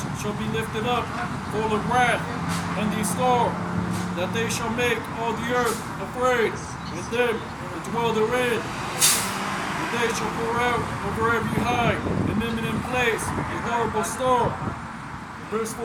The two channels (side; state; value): both; identical; correlation 1.00